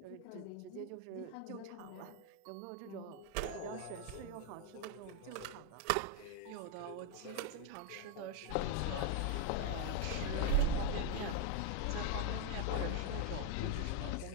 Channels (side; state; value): both; different; correlation 0.01